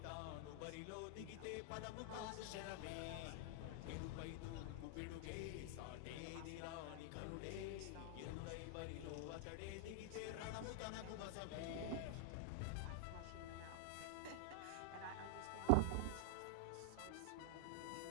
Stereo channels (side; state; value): both; different; correlation 0.00